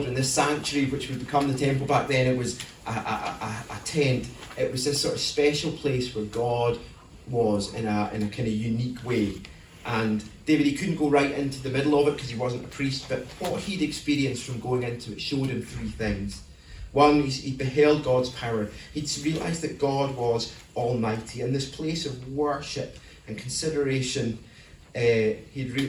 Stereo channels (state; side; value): identical; both; correlation 1.00